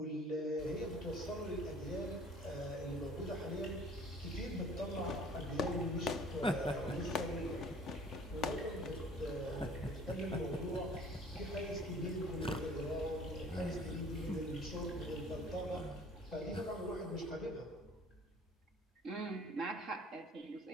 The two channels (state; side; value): normal; both; correlation 0.51